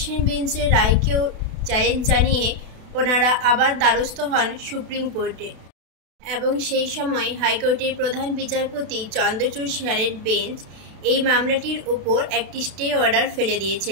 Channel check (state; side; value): late; left; 32 ms